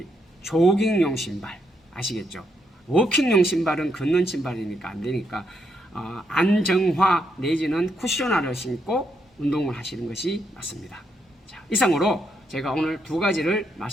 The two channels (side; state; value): both; normal; correlation 0.78